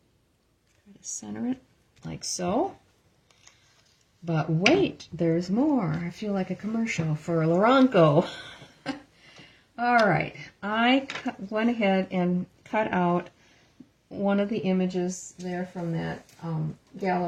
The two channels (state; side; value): identical; both; correlation 1.00